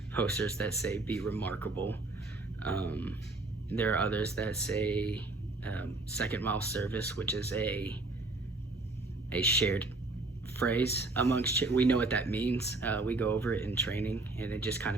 posters that say "be remarkable." Um, there are others that say second mile service, which is a shared phrase amongst we know what that means. We go over it in training, and it just kind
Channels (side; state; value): left; quieter; 3.1 dB